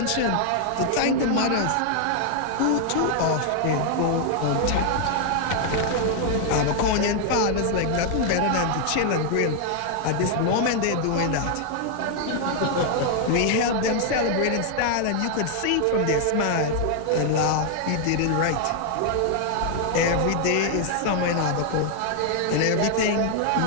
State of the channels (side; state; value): both; different; correlation 0.00